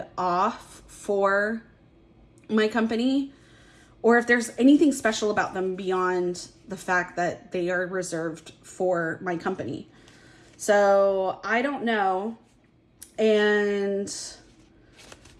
off for my company, or if there's anything special about them beyond the fact that they are reserved for my company. So I don't know. And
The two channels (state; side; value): identical; both; correlation 1.00